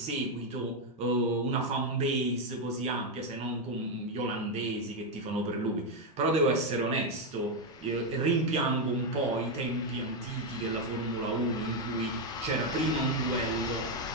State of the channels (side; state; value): both; normal; correlation 0.04